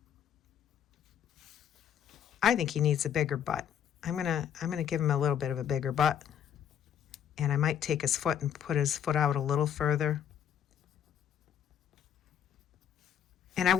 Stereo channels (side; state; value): right; quieter; 9.1 dB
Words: I think he needs a bigger butt. I'm gonna give him a little bit of a bigger butt, and I might take his foot and put his foot out a little further. And I